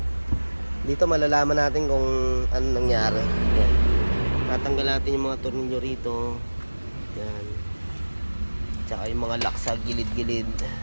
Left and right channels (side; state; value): both; inverted; correlation -1.00